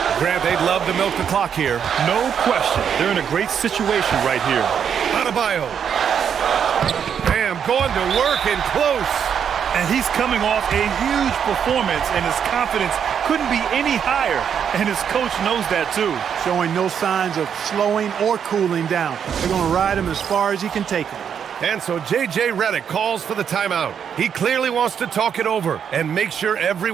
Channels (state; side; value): quieter; left; 7.9 dB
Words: Grant, they'd love to milk the clock here. No question. They're in a great situation right here. Adebayo. Bam, going to work and close. And he's coming off a huge performance, and his confidence couldn't be any higher. And his coach knows that, too. Showing no signs of slowing or cooling down. They're going to ride him as far as he can take him. And so J.J. Redick calls for the timeout. He clearly wants to talk it over and make sure